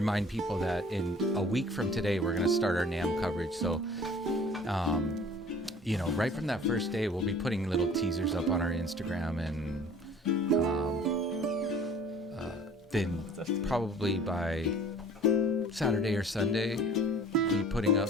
people that in a week from today, we're going to start our NAMM coverage. So, you know, right from that first day, we'll be putting little teasers up on our Instagram, and then probably by Saturday or Sunday, be putting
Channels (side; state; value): both; normal; correlation 0.49